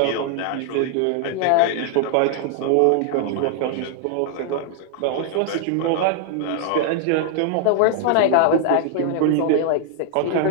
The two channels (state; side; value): different; both; correlation 0.00